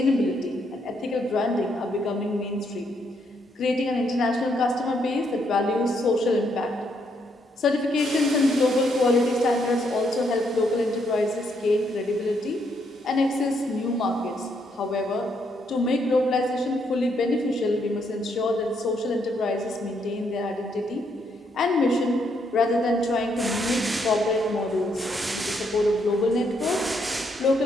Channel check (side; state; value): both; normal; correlation 0.74